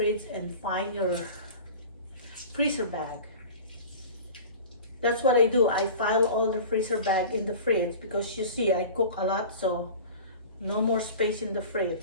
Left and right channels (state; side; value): inverted; both; correlation -0.38